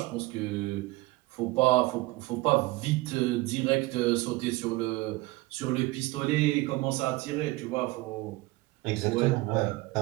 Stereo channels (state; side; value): quieter; left; 20.9 dB